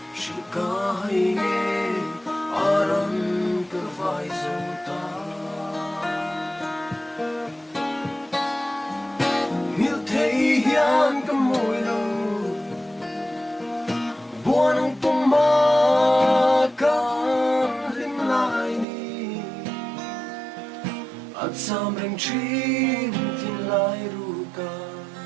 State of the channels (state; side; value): drops out; left; at 18.9 s